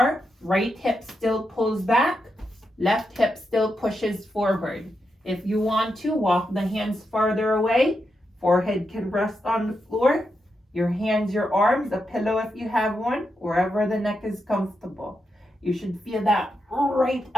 right hip still pulls back, left hip still pushes forward. If you want to, walk the hands farther away. Forehead can rest on the floor. Your hands, your arms, a pillow if you have one, wherever the neck is comfortable. You should feel that right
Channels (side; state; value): both; normal; correlation 0.85